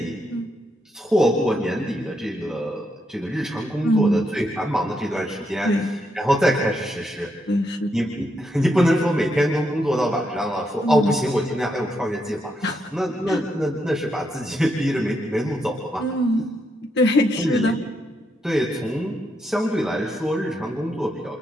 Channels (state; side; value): normal; both; correlation 0.80